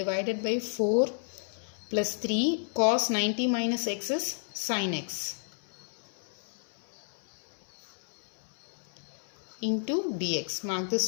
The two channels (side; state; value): right; silent; 57 dB below the other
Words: by 4 plus 3 cos 90 minus x is sin x into dx. Mark